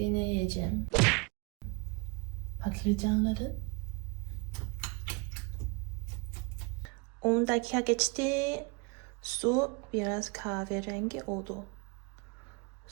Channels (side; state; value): left; quieter; 29.7 dB